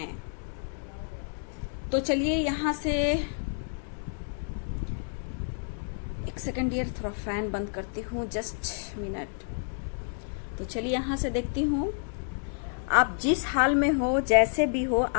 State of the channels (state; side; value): silent; right; digital silence